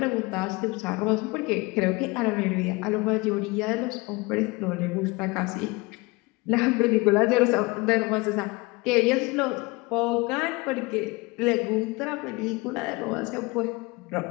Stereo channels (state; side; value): quieter; right; 24.7 dB